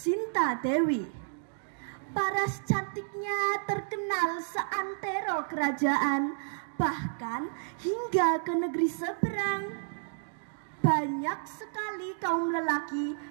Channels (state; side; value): silent; left; digital silence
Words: Dewi. Paras cantiknya terkenal seantero kerajaan, bahkan hingga ke negeri seberang. Banyak sekali kaum lelaki